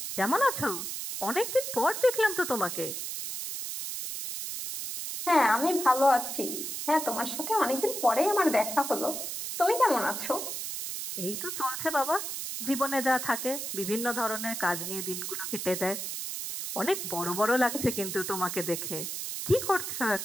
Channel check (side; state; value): right; noise; hiss, 5 dB below the sound